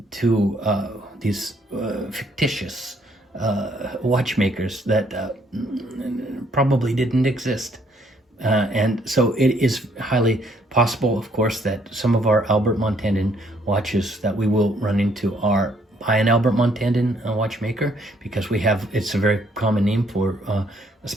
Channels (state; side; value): normal; both; correlation 0.67